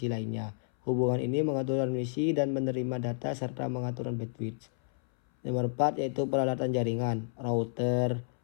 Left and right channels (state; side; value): silent; right; 57 dB below the other